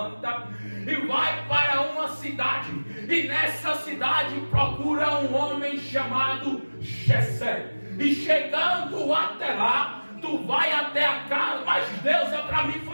e vai para uma cidade, e nessa cidade procura um homem chamado Jessé. E chegando até lá, tu vai até a casa. Mas Deus é para mim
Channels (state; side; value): inverted; both; correlation -1.00